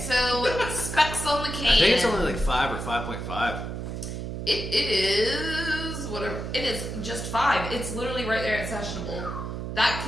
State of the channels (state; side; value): noise; right; hum, 6 dB below the sound